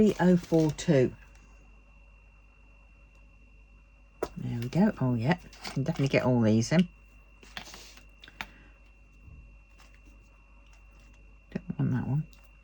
There we go. Oh, yeah. Can definitely get all these in. Don't want that one.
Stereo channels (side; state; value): both; identical; correlation 1.00